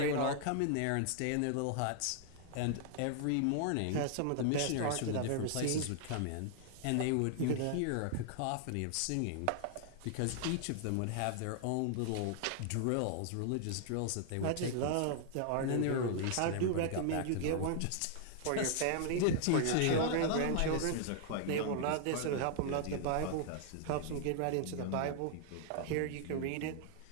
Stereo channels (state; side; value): different; both; correlation 0.00